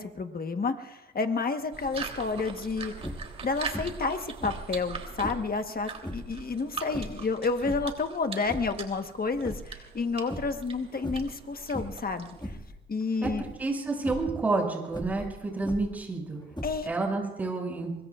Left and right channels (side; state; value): both; normal; correlation 0.47